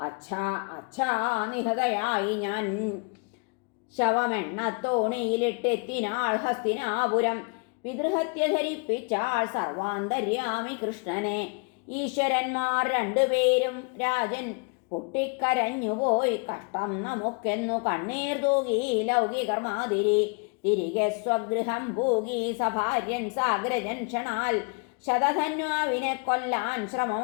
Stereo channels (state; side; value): quieter; right; 35.1 dB